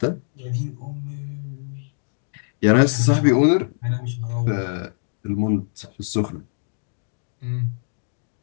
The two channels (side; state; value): right; silent; digital silence